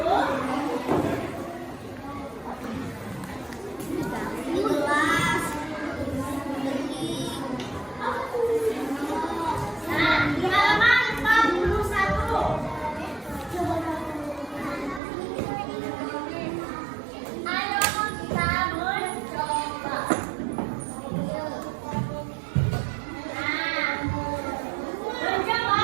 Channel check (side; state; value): left; drops out; at 15.0 s